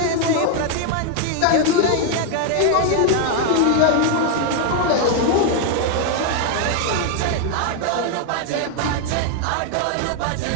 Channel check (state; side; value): different; both; correlation 0.00